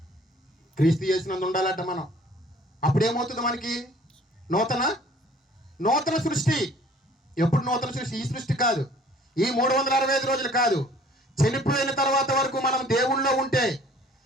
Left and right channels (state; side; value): normal; both; correlation 0.54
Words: క్రీస్తు యేసునందు ఉండాలంట మనం. అప్పుడేమవుతుంది మనకి? నూతన సృష్టి. ఎప్పుడు నూతన సృష్టి? ఈ సృష్టి కాదు, ఈ 365 రోజులు కాదు. చనిపోయిన తర్వాత వరకు మనం దేవుళ్ళో ఉంటే,